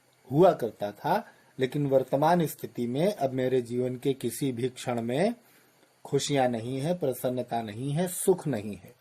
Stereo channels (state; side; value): identical; both; correlation 1.00